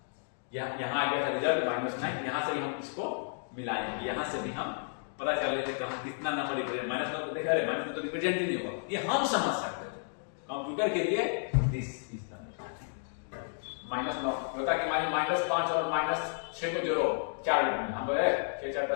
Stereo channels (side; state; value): right; silent; digital silence